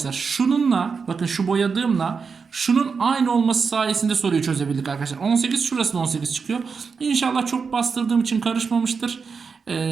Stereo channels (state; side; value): quieter; left; 5.4 dB